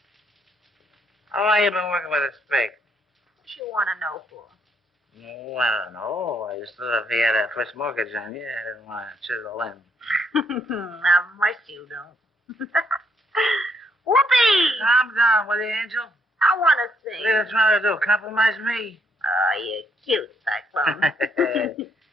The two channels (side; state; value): both; normal; correlation 0.72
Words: How long you been working with a spike? What you want to know for? Oh, I don't know. I just thought if he had a first mortgage on you, I didn't want to chisel in. Not much you don't. Whoopee! Calm down, will you, Angel? I want to sing. What are you trying to do? Compromise me? Oh, you're cute, Cyclone.